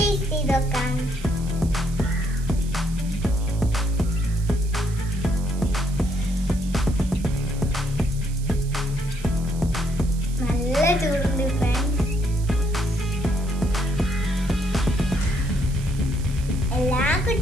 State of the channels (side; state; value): right; noise; hiss, 18 dB below the sound